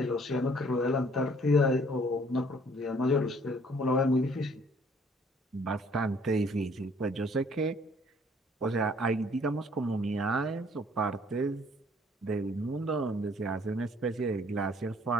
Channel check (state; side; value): normal; both; correlation 0.60